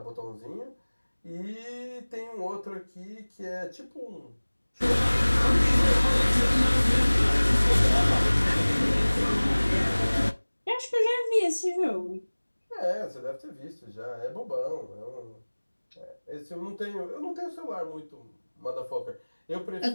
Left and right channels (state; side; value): inverted; both; correlation -1.00